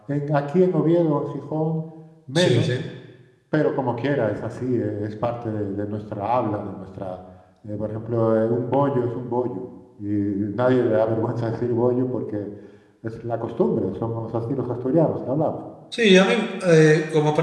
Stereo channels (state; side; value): identical; both; correlation 1.00